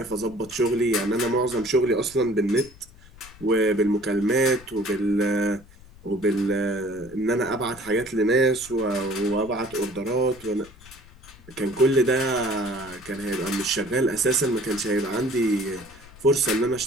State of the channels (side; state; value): left; noise; rumble, 22 dB below the sound